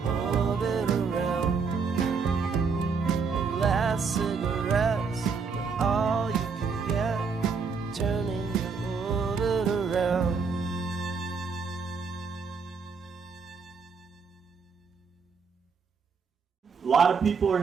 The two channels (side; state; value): left; quieter; 5.3 dB